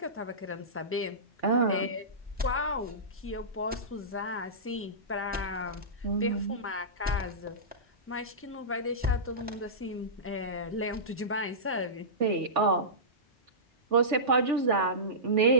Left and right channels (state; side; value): normal; both; correlation -0.19